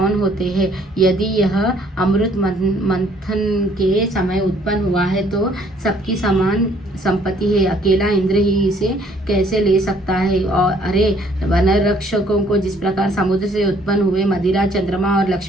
होते हैं? यदि यह अमृत मंथन के समय उत्पन्न हुआ है तो सबकी समान संपत्ति है, अकेला इंद्र ही इसे कैसे ले सकता है? और अरे, वन रक्षकों को जिस प्रकार समुद्र से उत्पन्न हुए मदिरा, चंद्रमा और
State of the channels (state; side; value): normal; both; correlation 0.62